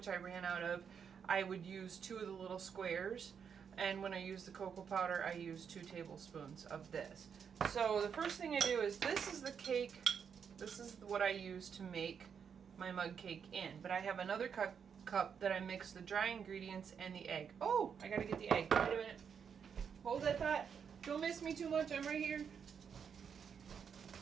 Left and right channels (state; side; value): quieter; left; 7.0 dB